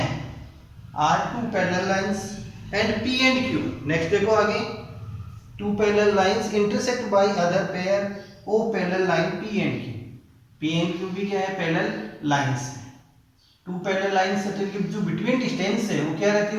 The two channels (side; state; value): both; identical; correlation 1.00